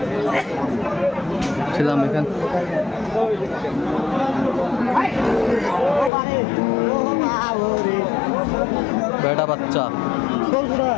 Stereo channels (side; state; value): right; drops out; at 6.1 s